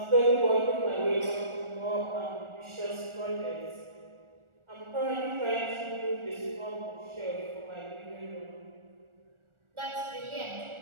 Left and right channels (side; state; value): left; late; 1.4 ms